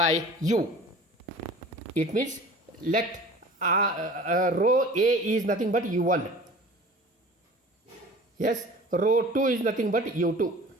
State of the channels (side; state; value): both; normal; correlation 0.42